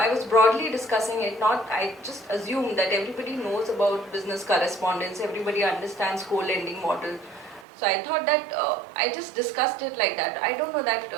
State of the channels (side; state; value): left; drops out; at 7.7 s